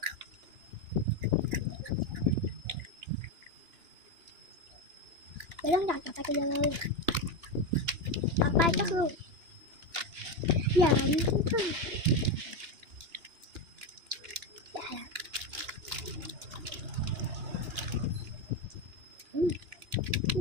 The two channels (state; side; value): late; left; 2.8 ms